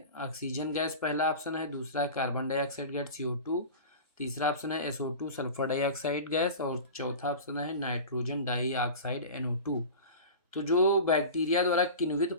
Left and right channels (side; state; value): both; inverted; correlation -0.33